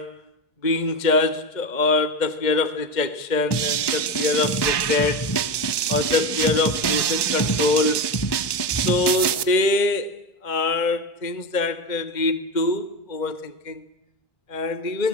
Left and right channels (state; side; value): late; right; 1.2 ms